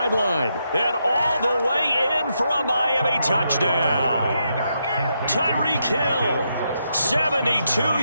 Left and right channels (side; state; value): both; inverted; correlation -0.81